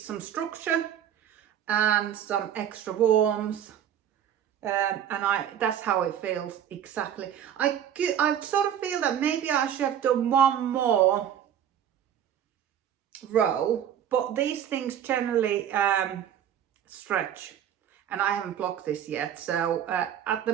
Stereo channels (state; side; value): quieter; left; 9.8 dB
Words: structure and some extra warmth, and that's how it feels exactly. I sort of feel that maybe I should have done one more row, but these things generally stretch, and I haven't blocked this yet, so at